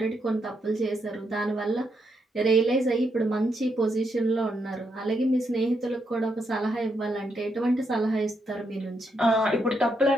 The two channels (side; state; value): both; normal; correlation 0.79